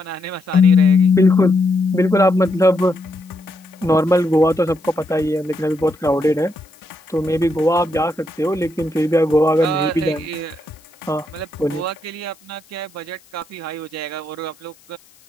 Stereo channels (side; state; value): left; noise; hiss, 29 dB below the sound